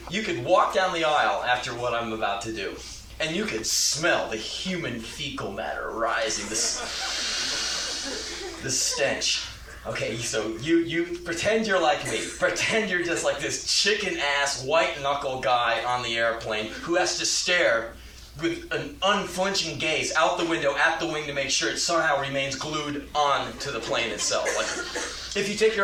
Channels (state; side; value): identical; both; correlation 1.00